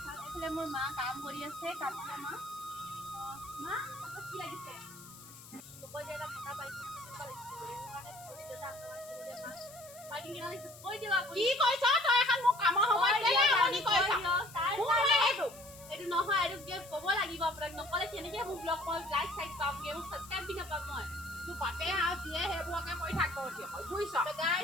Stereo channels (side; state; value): left; noise; hiss, 18 dB below the sound